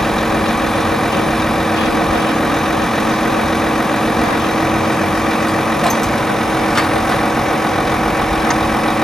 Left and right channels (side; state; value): both; normal; correlation 0.88